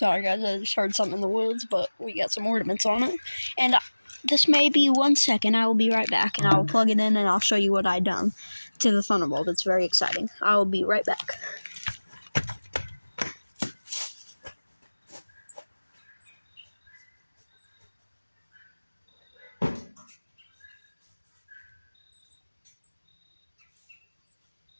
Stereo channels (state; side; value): inverted; both; correlation -1.00